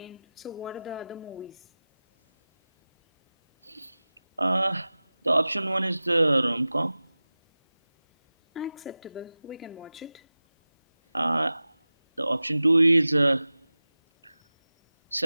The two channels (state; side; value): inverted; both; correlation -0.97